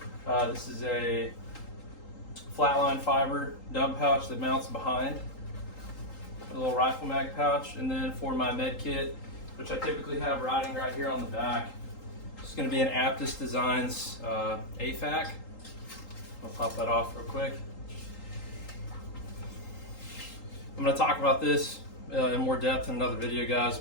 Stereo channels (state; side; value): late; right; 3.8 ms